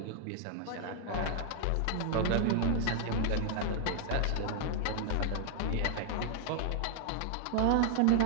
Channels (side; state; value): both; different; correlation -0.01